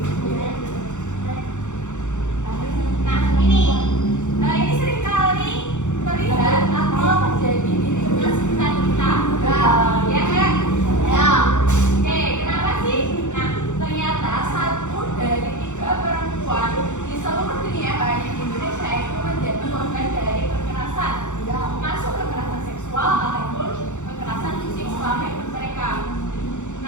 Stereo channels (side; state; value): right; late; 0.84 ms